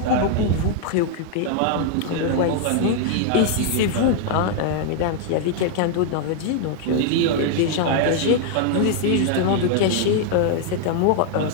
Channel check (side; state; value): both; different; correlation 0.00